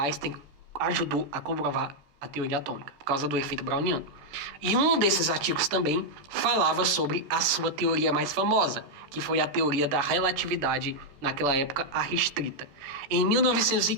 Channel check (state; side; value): late; left; 14 ms